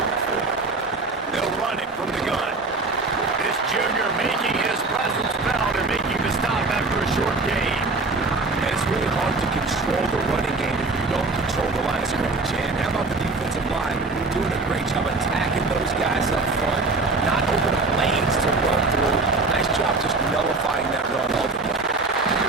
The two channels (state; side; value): quieter; left; 3.6 dB